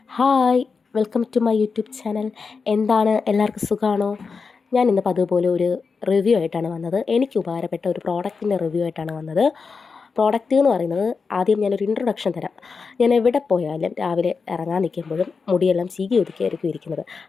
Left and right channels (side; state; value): right; quieter; 5.0 dB